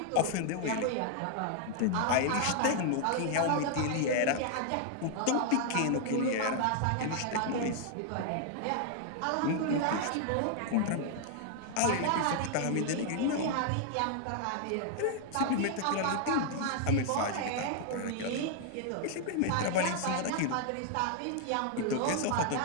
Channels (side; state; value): both; different; correlation 0.00